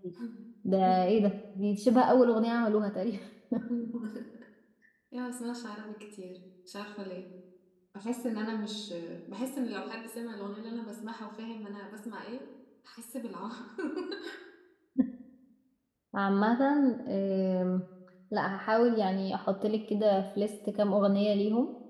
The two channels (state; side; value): identical; both; correlation 1.00